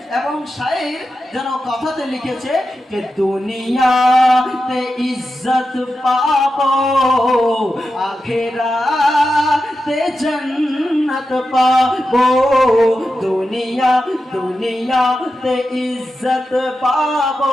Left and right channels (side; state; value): both; normal; correlation 0.90